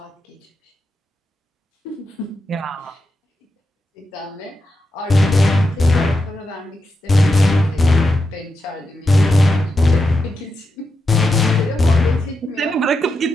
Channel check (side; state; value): both; normal; correlation 0.87